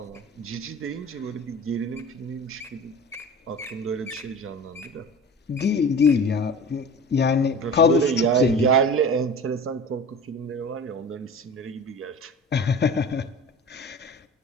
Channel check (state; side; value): normal; both; correlation 0.37